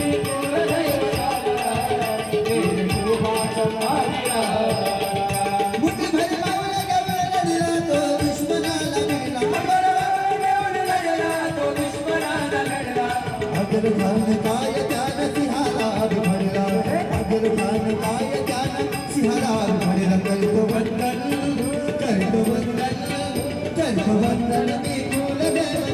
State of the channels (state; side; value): identical; both; correlation 1.00